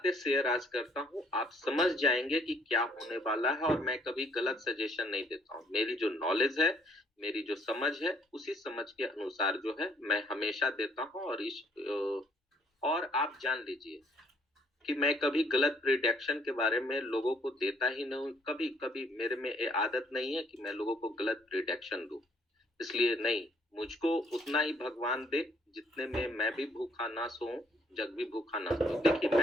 शेयर आज करता हूं, आप समझ जाएंगे कि क्या होने वाला है। और मैं कभी गलत सजेशन नहीं देता हूं। मेरी जो नॉलेज है, मेरी जो समझ है, उसी समझ के अनुसार जो है मैं हमेशा देता हूं। और आप जान लीजिए कि मैं कभी गलत प्रिडिक्शन के बारे में लोगों को देता ही नहीं। कभी कभी मेरे में ये आदत नहीं है कि मैं लोगों को गलत प्रिडिक्शन दूं। इसलिए नहीं, मुझको उतना ही भगवान दे जितने में मैं भी भूखा ना सोऊं, जग भी भूखा ना सो। देखिए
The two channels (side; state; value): both; normal; correlation 0.65